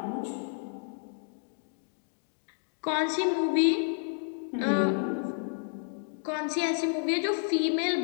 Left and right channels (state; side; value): silent; right; digital silence